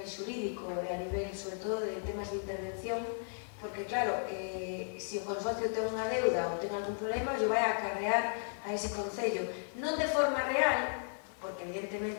xurídico e a nivel, sobre todo, de temas de intervención, porque claro, se o consorcio ten unha deuda ou ten algún problema, yo vai a acarrear a ese concello, non de forma real, porque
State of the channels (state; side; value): silent; right; 54 dB below the other